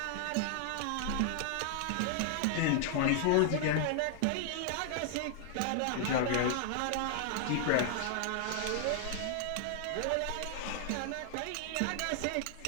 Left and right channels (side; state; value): both; different; correlation 0.00